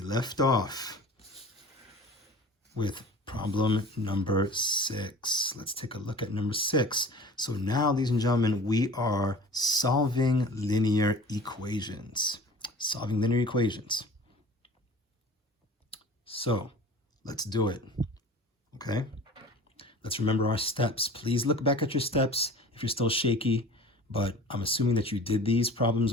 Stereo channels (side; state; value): both; normal; correlation 0.42